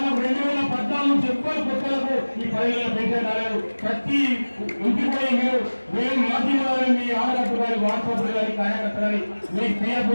2014 చెప్పాలి కొత్తలకు ఈ 10,000 పెన్షన్ రాలేదు. ప్రతి ఇంటికి పోయి మేము మాధ్యమాలని మీ ఆడగట్టు కానీ వాట్సాప్ కానీ కార్యకర్త కానీ మీకు పిఎఫ్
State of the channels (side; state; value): both; inverted; correlation -1.00